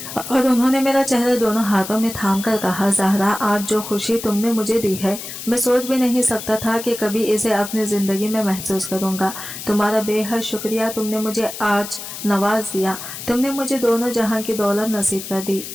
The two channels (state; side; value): noise; left; hiss, 10 dB below the sound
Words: और उन्होंने मेरा चेहरा दोनों हाथों में थाम कर कहा, ज़हरा, आज जो खुशी तुमने मुझे दी है, मैं सोच भी नहीं सकता था कि कभी इसे अपनी जिंदगी में महसूस करूंगा। तुम्हारा बेहद शुक्रिया, तुमने मुझे आज नवाज दिया, तुमने मुझे दोनों जहां की दौलत नसीब कर दी।